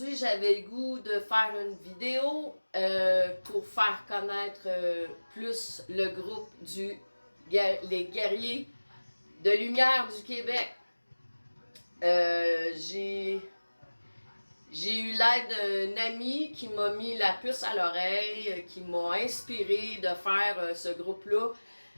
j'avais le goût de faire une vidéo pour faire connaître plus le groupe les Guerriers de Lumière du Québec. J'ai eu l'aide d'un ami qui m'a mis la puce à l'oreille, qui m'a inspiré de faire ce groupe-là,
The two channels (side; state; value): both; inverted; correlation -1.00